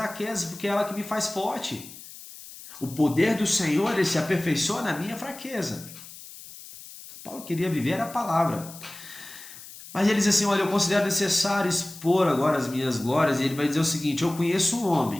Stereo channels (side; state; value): left; noise; hiss, 16 dB below the sound